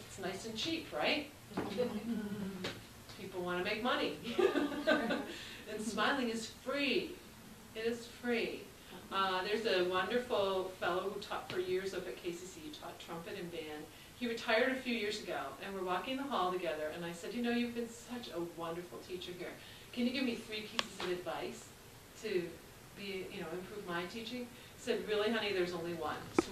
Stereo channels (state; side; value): identical; both; correlation 1.00